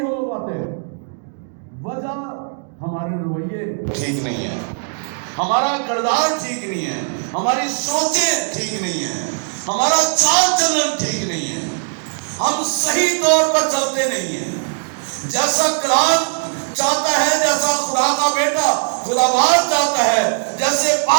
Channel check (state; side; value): silent; left; digital silence